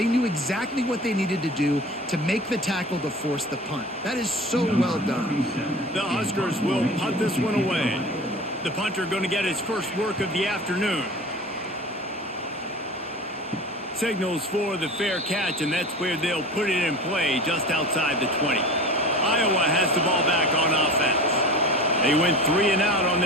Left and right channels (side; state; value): both; normal; correlation 0.37